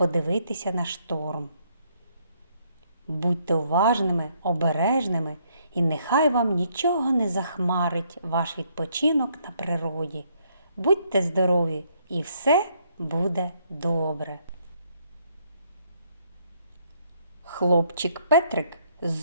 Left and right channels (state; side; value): inverted; both; correlation -0.70